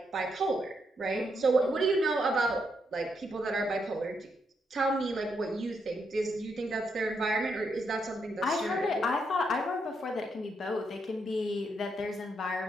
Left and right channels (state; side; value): normal; both; correlation 0.79